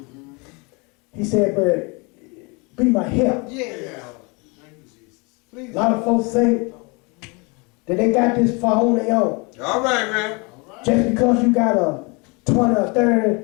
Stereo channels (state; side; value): quieter; right; 29.7 dB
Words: He said, but be my help. A lot of folks think that they got this far on their own. All right, man. Just because you got a 20 or 30